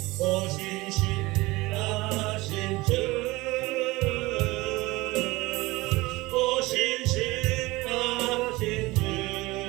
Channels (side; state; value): left; quieter; 21.3 dB